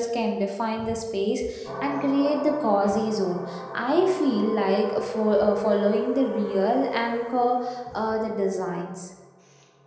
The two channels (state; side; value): identical; both; correlation 1.00